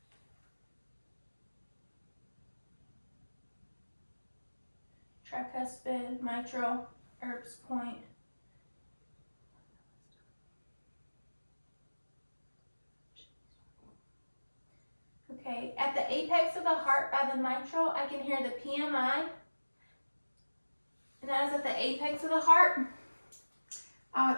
mitral, Erb's point. Okay, at the apex of the heart by the mitral, I can hear the PMI and that is at the apex of the heart. I would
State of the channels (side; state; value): both; inverted; correlation -1.00